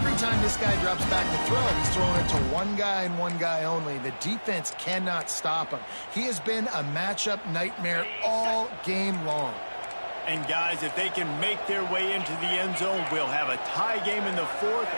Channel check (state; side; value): inverted; both; correlation -1.00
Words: time this guy drops back to throw, he's throwing it to one guy and one guy only. The defense cannot stop him. He has been a matchup nightmare all game long. And guys, if they can make their way into the end zone, we'll have a tie game in the 4th,